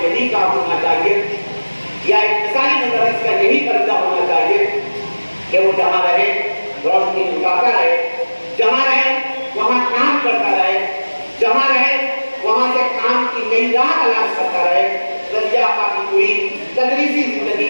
यही काम होना चाहिए या एक मिसाली मुदर्रिस का यही तरीका होना चाहिए कि वो जहाँ रहे रोशनी उठाता रहे, जहाँ रहे वहाँ काम करता रहे, जहाँ रहे वहाँ से काम की नई राह तलाश करता रहे। रज़िया आपा की पूरी तदरीसी जिंदगी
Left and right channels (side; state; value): both; inverted; correlation -1.00